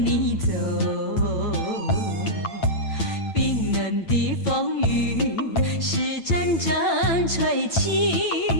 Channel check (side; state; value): right; late; 8.9 ms